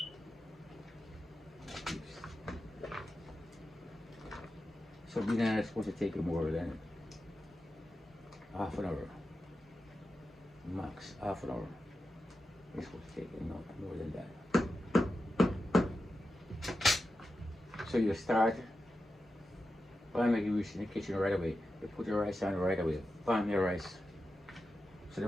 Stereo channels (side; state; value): both; normal; correlation 0.91